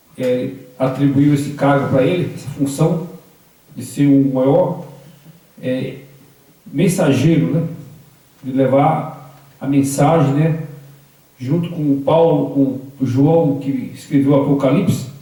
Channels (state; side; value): identical; both; correlation 1.00